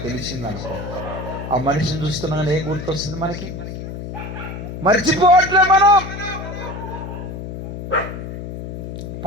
తెలిసిందనుకో, ఆ మనిషిని చూస్తున్నాగానే ఏం గుర్తొస్తుంది మనకి? మర్చిపోవట్లే మనం.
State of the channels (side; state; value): left; noise; hum, 8 dB below the sound